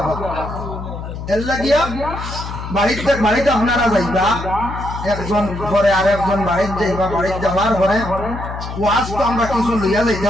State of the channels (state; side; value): noise; left; hum, 8 dB below the sound